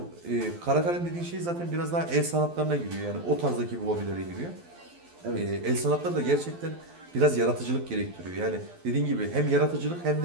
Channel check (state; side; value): late; left; 12 ms